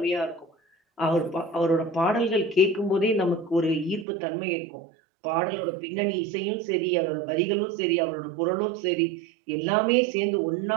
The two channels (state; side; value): drops out; left; at 4.0 s